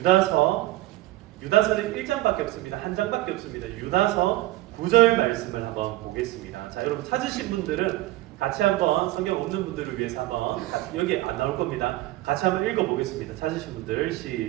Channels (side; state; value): left; quieter; 17.2 dB